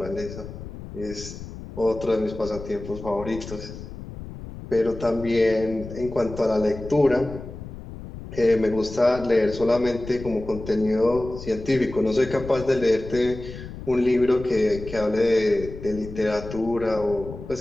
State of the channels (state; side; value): noise; left; rumble, 12 dB below the sound